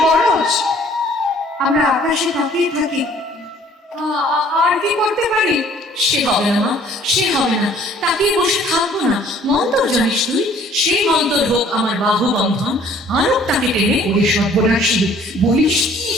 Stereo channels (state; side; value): normal; both; correlation 0.56